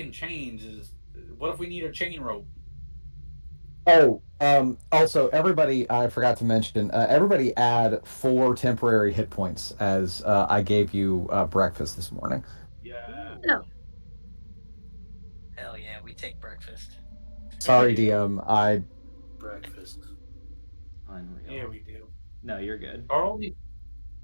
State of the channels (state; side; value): inverted; both; correlation -1.00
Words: chains is. What if we need a chain rope? Oh, also, everybody, I forgot to mention, everybody add 4 temporary hit points as I gave you breakfast this morning. Yeah. no. Hell yeah, we take breakfast. Sorry, DM. I Breakfast. Unreal. Yeah, we do. No, you're good. Are all these,